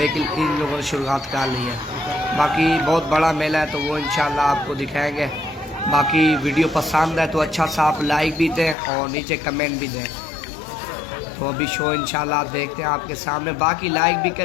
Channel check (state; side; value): drops out; right; at 8.8 s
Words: इन लोगों ने शुरुआत कर ली है। बाकी बहुत बड़ा मेला है, तो वो इंशाल्लाह आपको दिखाएंगे। बाकी वीडियो पसंद है तो अच्छा सा आप लाइक भी दें और नीचे कमेंट भी दें। तो अभी शो इंशाल्लाह देखते हैं आपके सामने। बाकी लाइक भी